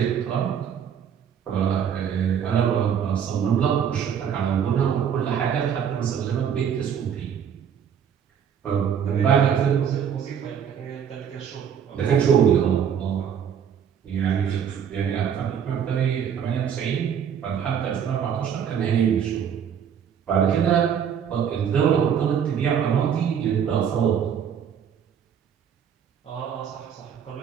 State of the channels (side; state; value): left; quieter; 8.2 dB